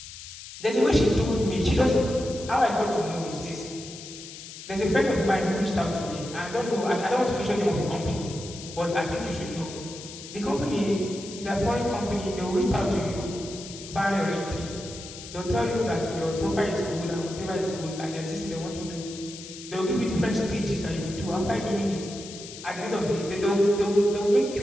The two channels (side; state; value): left; noise; hiss, 13 dB below the sound